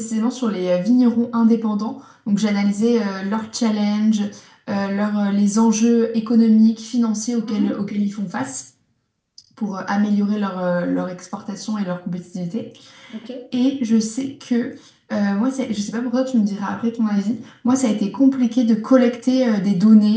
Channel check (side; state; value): both; identical; correlation 1.00